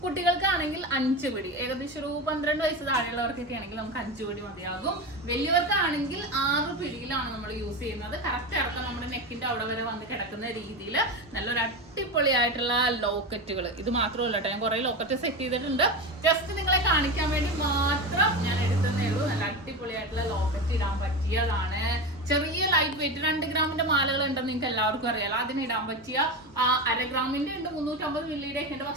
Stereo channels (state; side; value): normal; both; correlation 0.21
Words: കുട്ടികൾക്കാണെങ്കിൽ 5 പിടി, ഏകദേശം ഒരു 12 വയസ്സ് താഴെയുള്ളവർക്കൊക്കെ ആണെങ്കിൽ നമുക്ക് 5 പിടി മതിയാകും. വലിയവർക്കാണെങ്കിൽ 6 പിടിയിലാണ് നമ്മൾ യൂസ് ചെയ്യുന്നത്. കറക്റ്റ് ഇറക്കം നമ്മുടെ നെക്കിന്റെ അവിടെ വരെ വന്ന് കിടക്കുന്ന രീതിയിൽ നല്ലൊരു അടിപൊളിയായിട്ടുള്ള ലോക്കറ്റുകൾ. ഇത് മാത്രമല്ല കേട്ടോ, ഞാൻ കുറെ ലോക്കറ്റ് സെറ്റ് ചെയ്തിട്ടുണ്ട്. ജസ്റ്റ് നിങ്ങളെ കാണിക്കാൻ വേണ്ടി മാത്രം ഞാൻ എടുത്തതേ ഉള്ളൂ. നല്ല അടിപൊളിയായിട്ടുള്ള ലോക്കറ്റ് ഇടാൻ പറ്റിയതാണ്. ചെറിയ ലൈറ്റ് വെയിറ്റ് 2 ഗ്രാമിന്റെ മാലകൾ ഉണ്ടെന്ന് നിങ്ങൾക്ക് എല്ലാവർക്കും അറിയാലോ. അതിനിടാൻ പറ്റിയ 1/2 ഗ്രാമിന്റെ ഉണ്ട്, 350 മില്ലിയുടെ ഒക്കെ ഉണ്ട്.